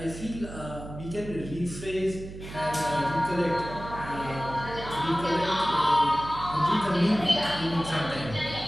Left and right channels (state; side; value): noise; right; hum, 12 dB below the sound